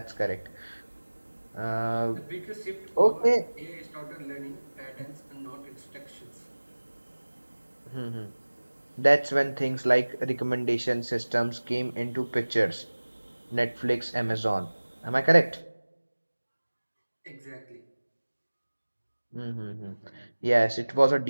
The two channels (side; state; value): both; inverted; correlation -1.00